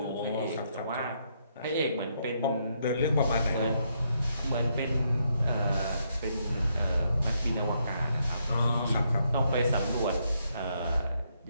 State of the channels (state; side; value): inverted; both; correlation -0.76